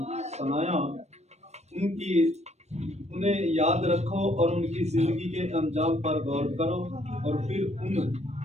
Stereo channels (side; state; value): left; late; 0.32 ms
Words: सुनाया उन्हें याद रखो और उनकी जिंदगी के अंजाम पर गौर करो और फिर उन